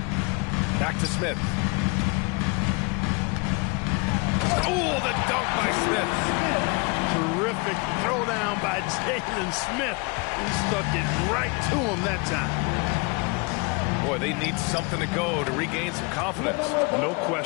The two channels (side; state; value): right; quieter; 29.8 dB